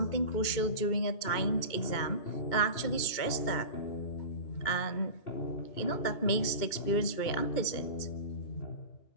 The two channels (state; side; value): late; right; 2.2 ms